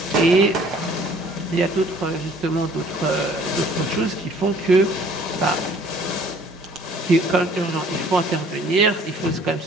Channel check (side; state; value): both; normal; correlation 0.55